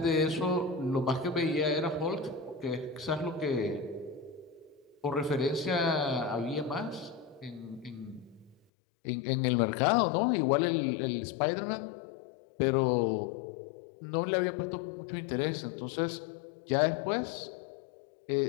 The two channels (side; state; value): right; drops out; at 8.6 s